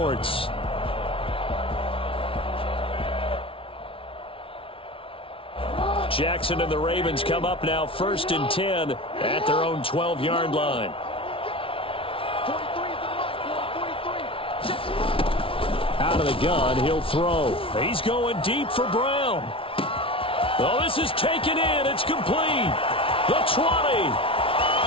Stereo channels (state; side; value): late; right; 0.26 ms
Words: Jackson and the Ravens come up now 1st and 10 at their own 12-yard line. Out of the gun, he'll throw. He's going deep for Brown. Oh, this is taken in. It's complete. The 20.